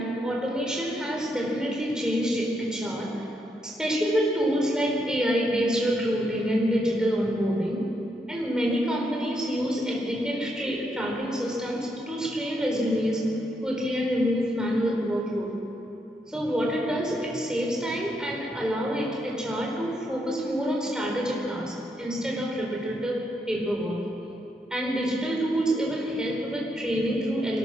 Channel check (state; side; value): normal; both; correlation 0.78